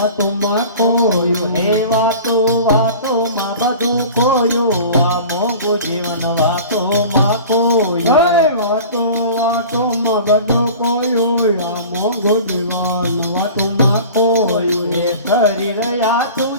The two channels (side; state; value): both; inverted; correlation -0.40